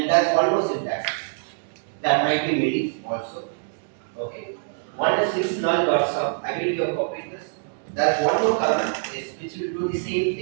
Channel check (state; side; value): silent; left; digital silence